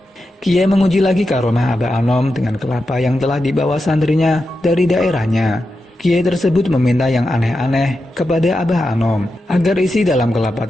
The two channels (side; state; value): both; normal; correlation 0.89